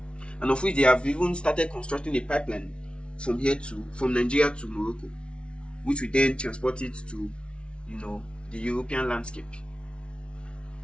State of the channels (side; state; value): right; late; 0.058 ms